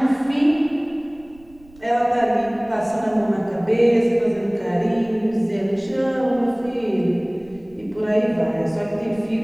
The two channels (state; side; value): noise; right; rumble, 26 dB below the sound